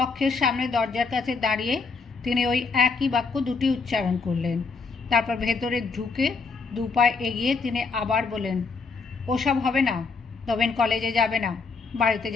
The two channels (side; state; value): right; quieter; 4.6 dB